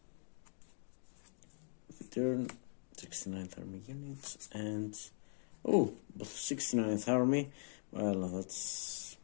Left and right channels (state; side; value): silent; right; digital silence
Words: Return 69th Army units, and both 69th Army. Well, that's,